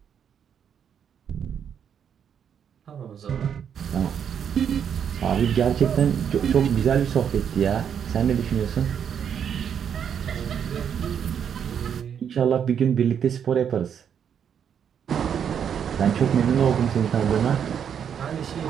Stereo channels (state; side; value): quieter; left; 8.1 dB